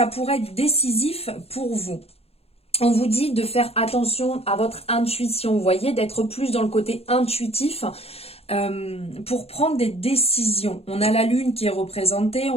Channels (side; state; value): right; late; 0.29 ms